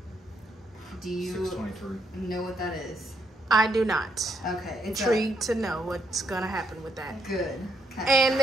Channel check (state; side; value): normal; both; correlation 0.75